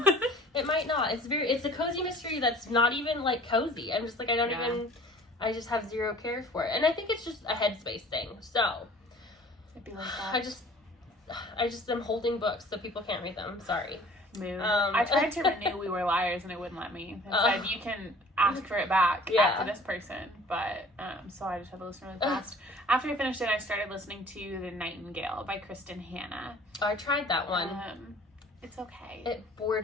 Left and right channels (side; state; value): both; normal; correlation 0.49